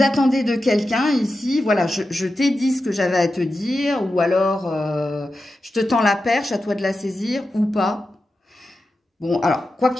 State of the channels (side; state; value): both; normal; correlation 0.91